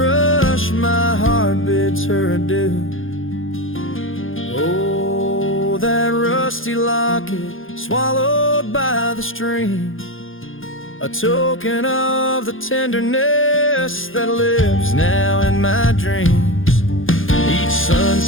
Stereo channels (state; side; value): late; right; 0.59 ms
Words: my heart bids her adieu. Oh, that rusty locket swallowed by the stream, a token of the tenderness that lives now in my dreams. Each